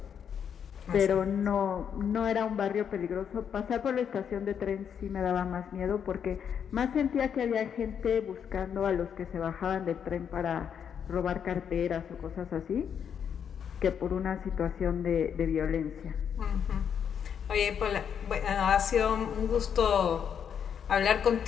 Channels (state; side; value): quieter; right; 7.9 dB